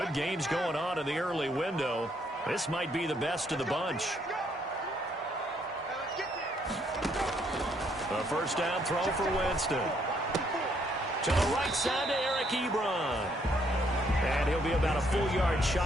games going on in the early window. This might be the best of the bunch. A first down throw for Winston. To the right side to Eric Ebron. And he'll be about a full yard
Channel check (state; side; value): normal; both; correlation 0.70